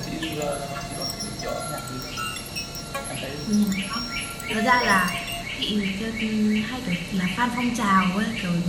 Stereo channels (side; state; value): both; identical; correlation 1.00